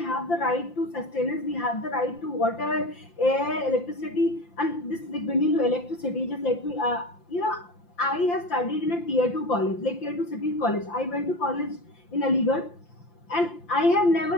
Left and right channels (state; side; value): late; right; 5.8 ms